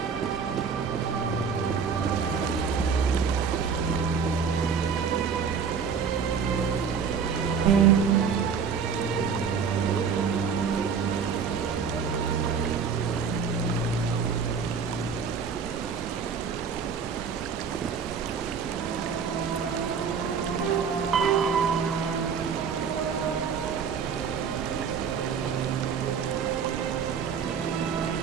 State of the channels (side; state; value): left; quieter; 6.4 dB